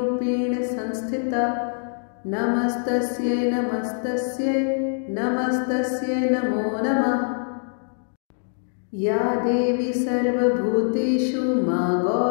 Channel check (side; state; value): right; silent; digital silence